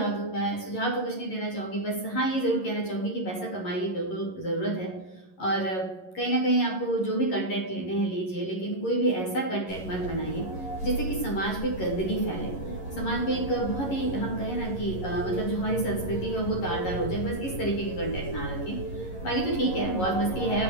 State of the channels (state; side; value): late; right; 11 ms